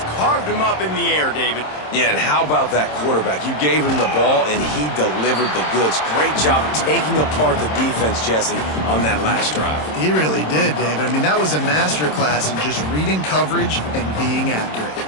carved him up in the air, David. Yeah, and how about that quarterback? You gave him the ball, and he delivered the goods. Great job taking apart the defense, Jesse, on that last drive. He really did, David. I mean, that was a masterclass in just reading coverage and being accurate.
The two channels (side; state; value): right; late; 27 ms